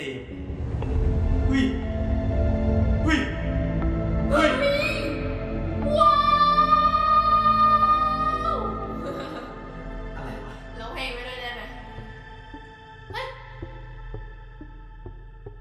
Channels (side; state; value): both; identical; correlation 1.00